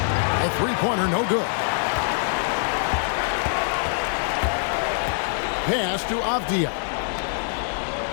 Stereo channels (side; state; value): right; silent; digital silence